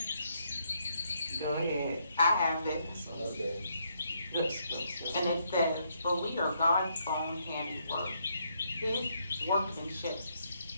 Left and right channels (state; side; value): inverted; both; correlation -0.75